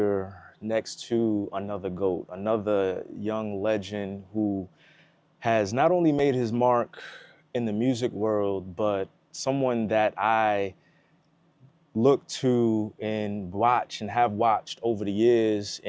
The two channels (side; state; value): both; identical; correlation 1.00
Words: next to another GOAT, another young legend who has not only made his mark in the music world, but someone that I look to and watch and have watched over the years